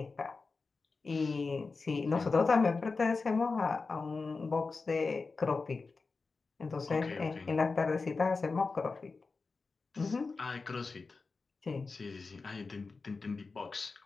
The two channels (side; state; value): right; quieter; 4.2 dB